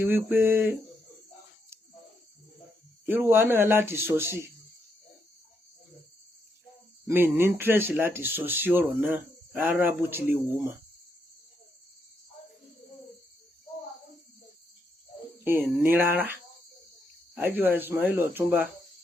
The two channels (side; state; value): both; normal; correlation 0.79